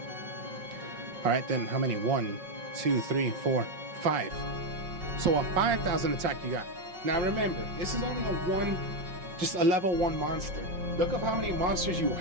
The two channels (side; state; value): left; late; 5.5 ms